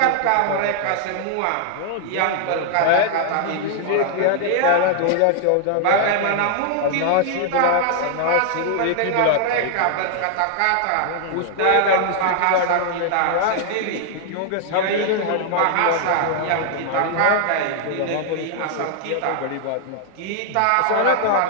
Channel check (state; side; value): different; both; correlation -0.01